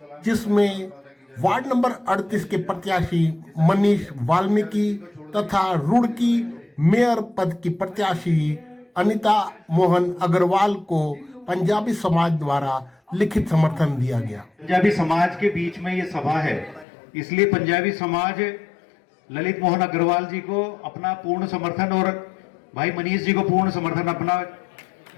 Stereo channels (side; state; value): right; drops out; at 16.9 s